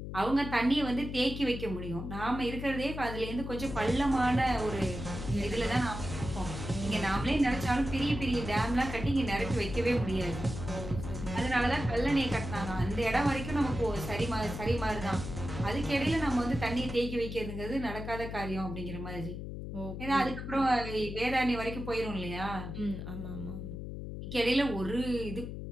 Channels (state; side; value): noise; left; hum, 7 dB below the sound